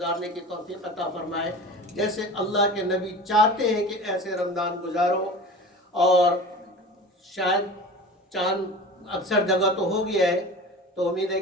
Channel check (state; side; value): normal; both; correlation 0.35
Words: کی توفیق عطا فرمائے جیسے اللہ کے نبی چاہتے ہیں کہ ایسے رمضان گزارو. اور شاید چاند اکثر جگہ تو ہو گیا ہے، تو امید ہے